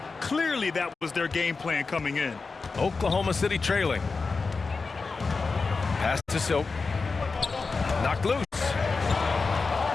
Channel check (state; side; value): quieter; right; 4.3 dB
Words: Clearly that was their game plan coming in. Oklahoma City trailing. Pass to Silk. Knocked loose.